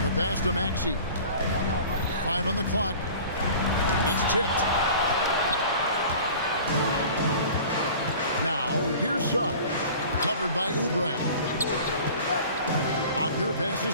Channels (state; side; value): inverted; both; correlation -0.42